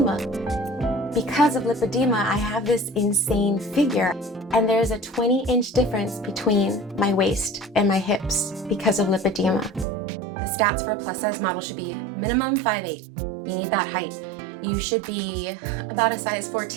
Because of lipedema, I have this insane figure. And there's a 20-inch difference between my waist and my hips because of lipedema. The stats for a plus size model should be minimum 5'8". You need that height. You should be about a size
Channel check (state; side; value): drops out; left; at 9.9 s